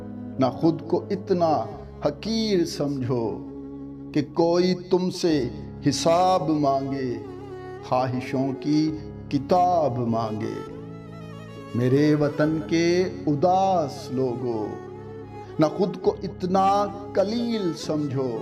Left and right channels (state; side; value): identical; both; correlation 1.00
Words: ना खुद को इतना हकीर समझो कि कोई तुमसे हिसाब मांगे, ख्वाहिशों की किताब मांगे। मेरे वतन के उदास लोगों, ना खुद को इतना कलील समझो